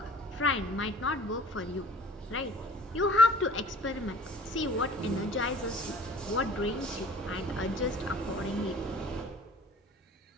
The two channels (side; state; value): both; normal; correlation 0.46